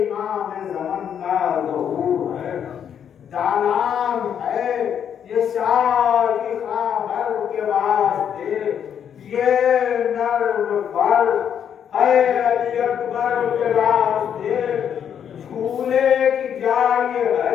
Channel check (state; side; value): quieter; right; 8.6 dB